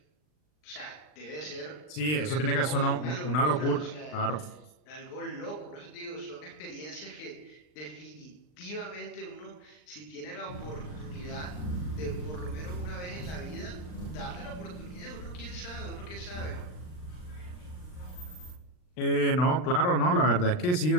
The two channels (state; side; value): late; right; 39 ms